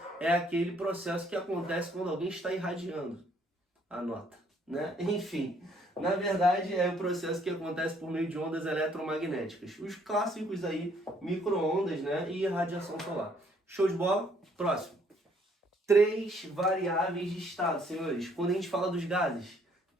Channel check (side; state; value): both; normal; correlation 0.65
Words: é aquele processo que acontece quando alguém está irradiando. Anota, né? Enfim, na verdade é o processo que acontece por meio de ondas eletromagnéticas. Os clássicos aí, micro-ondas, né? E radiação solar. Show de bola? Próximo. 3 variáveis de estado, senhores. Quando a gente fala dos gases,